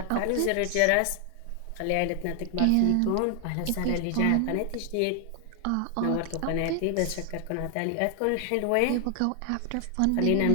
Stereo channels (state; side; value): different; both; correlation 0.00